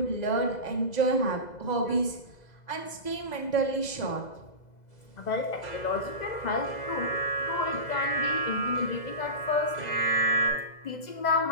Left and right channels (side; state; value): right; late; 2.0 ms